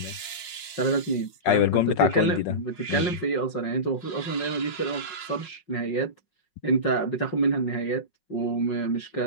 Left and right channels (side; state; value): right; late; 5.5 ms